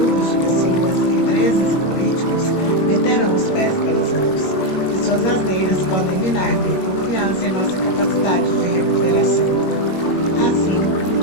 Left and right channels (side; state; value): right; late; 21 ms